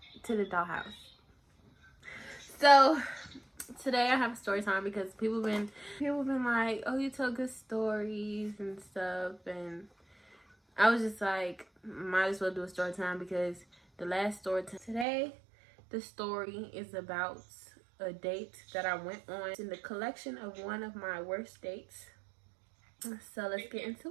to the dollhouse. So today I have a story time because people been like, oh, you tell good stories and stuff, and I was just like, might as well do a story time because the last story time today, the story is about a date that I went on in the collection of one of my worst dates. So let's get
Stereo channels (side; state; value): left; drops out; at 15.1 s